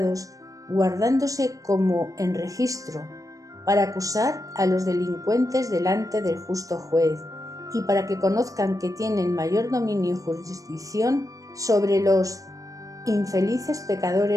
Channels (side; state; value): left; late; 0.16 ms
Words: guardándose como en registro, para acusar a los delincuentes delante del justo juez, y para que conozcan que tienen mayor dominio y jurisdicción sobre los infelices